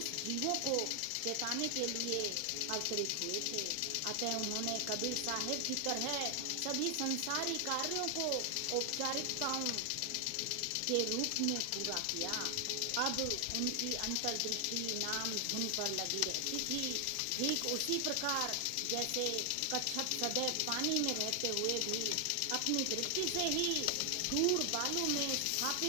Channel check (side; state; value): both; different; correlation 0.00